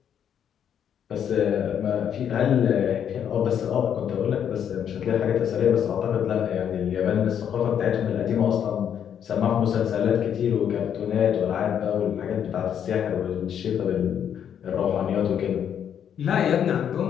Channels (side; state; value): right; quieter; 8.8 dB